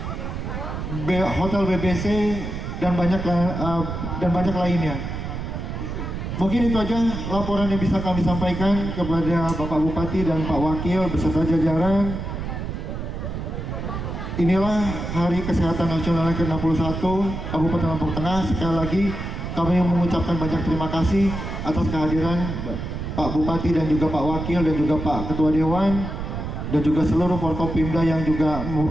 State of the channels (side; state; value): right; noise; rumble, 5 dB below the sound